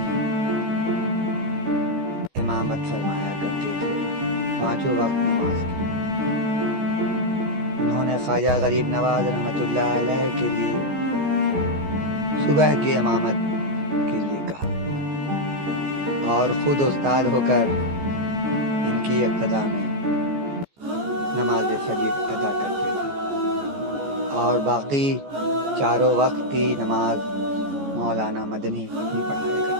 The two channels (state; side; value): late; left; 14 ms